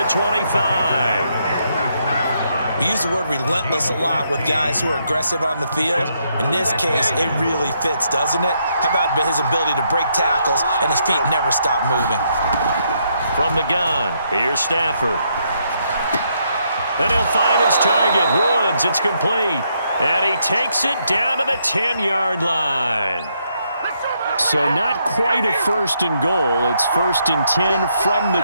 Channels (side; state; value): both; inverted; correlation -0.76